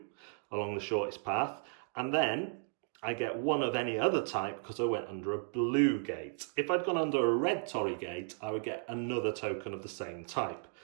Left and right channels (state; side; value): silent; left; 55 dB below the other